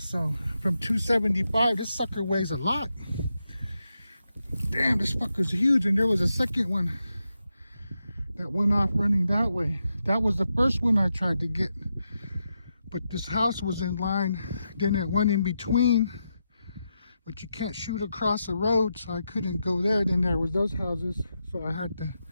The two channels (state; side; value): inverted; both; correlation -0.86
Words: from 275, this sucker weighs a lot. Damn, this fucker's huge. And there was a second one that went off running that way. That was the first one I tried to get. But this house was in line. Then that one in between. But you can't shoot across the road, so I couldn't go there. Then there was those houses. So I had to